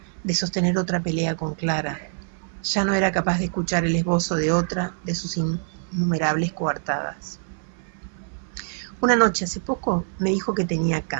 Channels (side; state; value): left; silent; 59 dB below the other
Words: de sostener otra pelea con Clara. Ya no era capaz de escuchar el esbozo de otra de sus innumerables coartadas. Una noche, hace poco, me dijo que tenía